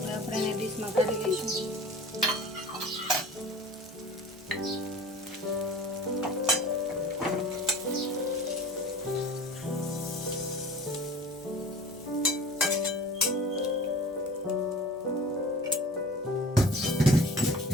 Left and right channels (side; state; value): both; normal; correlation 0.42